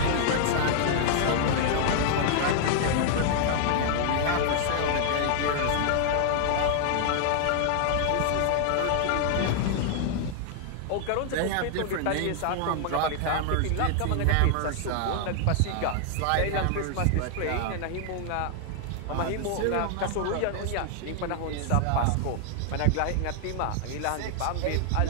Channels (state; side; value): different; both; correlation 0.00